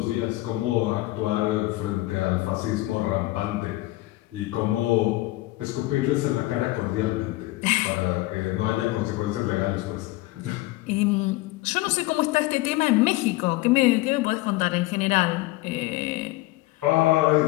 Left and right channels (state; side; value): quieter; right; 19.1 dB